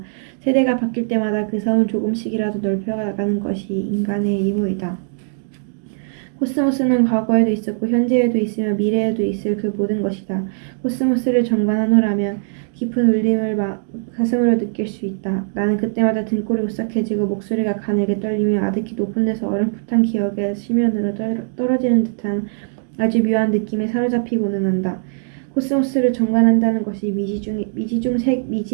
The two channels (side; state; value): left; silent; digital silence